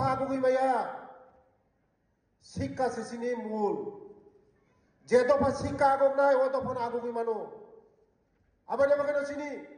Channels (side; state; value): both; identical; correlation 1.00